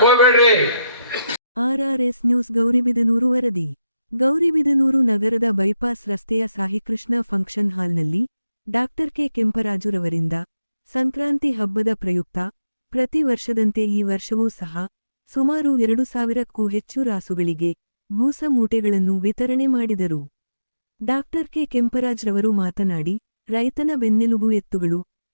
ಹೋಗ್ಬೇಡ್ರಿ. RRS ನ್ಯೂಸ್ ಗೌರಿಬಿದನೂರು ವರದಿ. ಗೌರಿಬಿದನೂರು ನಗರದ ಬೈಪಾಸ್ ರಸ್ತೆಯ ಸಾಯಿಕೃಷ್ಣ ಫಂಕ್ಷನ್ ಹಾಲ್ನಲ್ಲಿ ಡಾಕ್ಟರ್ ಕೆ ಕೆಂಪರಾಜುರವರಿಂದ ಸಂಕ್ರಾಂತಿ ಹಬ್ಬದ ಪ್ರಯುಕ್ತ ಪ್ರತಿ ವರ್ಷದಂತೆ ಈ ವರ್ಷವೂ ಸಹ ಸುಮಾರು 2000ಕ್ಕೂ ಹೆಚ್ಚು ರಾಸುಗಳಿಗೆ ಬೂಸ ಮೂಟೆಗಳನ್ನು ವಿತರಣೆ ಮಾಡಿದರು. ಡಾಕ್ಟರ್ ಕೆ ಕೆಂಪರಾಜ್ರವರು ಮಾತನಾಡಿ, ರೈತನ ಬೆನ್ನೆಲುಬು ಎತ್ತುಗಳು,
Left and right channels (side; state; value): both; inverted; correlation -0.87